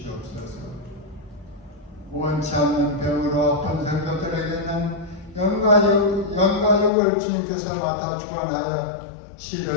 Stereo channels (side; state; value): right; drops out; at 6.9 s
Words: 원치 않는 병으로 아픈 성도들에게는 영과 육을 주님께서 맡아 주관하여